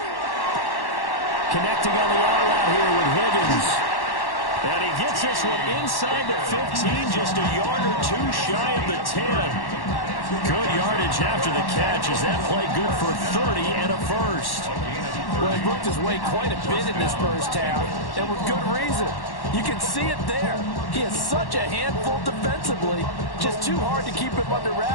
Connecting on the out route here with Higgins. And he gets this one inside the 15, just a yard or 2 shy of the 10. Good yardage after the catch. Is that play good for 30 and a 1st? Well, he worked his way quite a bit in this first half, and with good reason. You can see it there. He is such a handful defensively, just too hard to keep him under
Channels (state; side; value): late; right; 1.1 ms